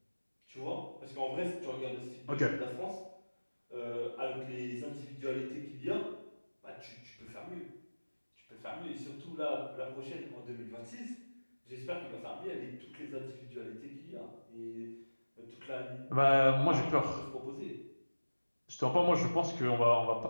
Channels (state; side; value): inverted; both; correlation -1.00